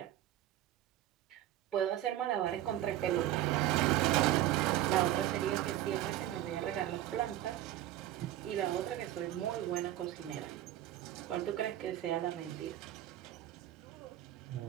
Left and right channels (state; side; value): quieter; left; 13.5 dB